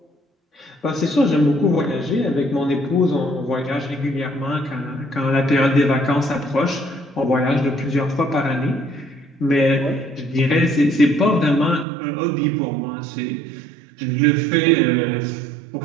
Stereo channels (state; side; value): drops out; left; at 11.9 s